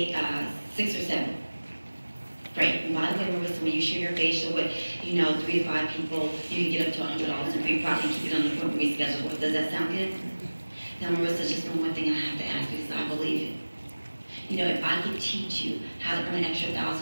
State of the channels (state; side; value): inverted; both; correlation -1.00